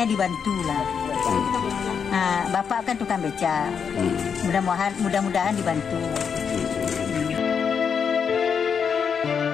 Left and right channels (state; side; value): quieter; right; 6.8 dB